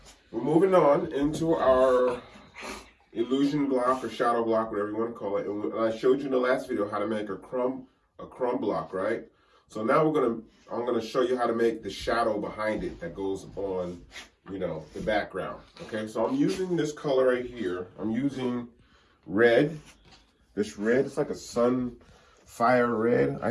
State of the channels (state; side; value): identical; both; correlation 1.00